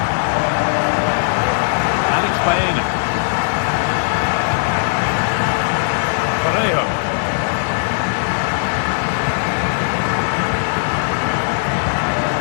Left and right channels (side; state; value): right; silent; 61 dB below the other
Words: Alex Baena. Parejo.